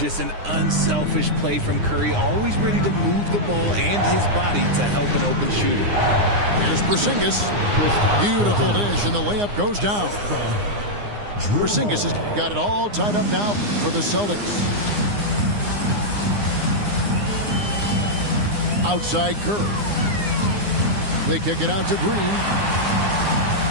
an unselfish play from Curry, always ready to move the ball and his body to help an open shooter. Here's Porzingis. Beautiful dish, and the layup goes down. Porzingis has got it all tied up now for the Celtics. Outside Curry. They kick it out to Green.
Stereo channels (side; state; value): left; late; 9.7 ms